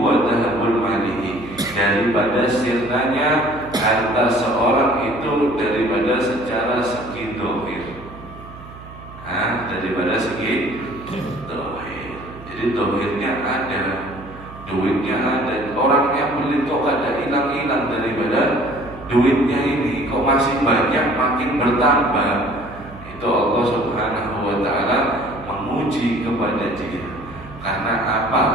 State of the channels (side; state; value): right; noise; hum, 17 dB below the sound